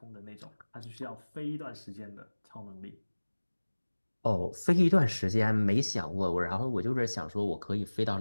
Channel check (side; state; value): both; inverted; correlation -1.00